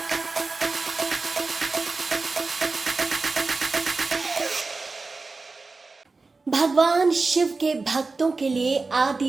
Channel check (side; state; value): left; quieter; 3.9 dB